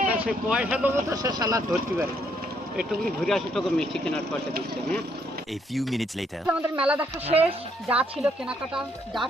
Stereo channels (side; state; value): both; normal; correlation 0.71